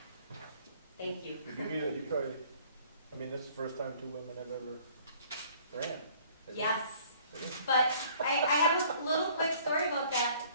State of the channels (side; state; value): both; inverted; correlation -0.56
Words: Thank you. You probably, I mean, this is the first time 2 women have ever ran. isn't it? Yes. But I have a little quick story about that,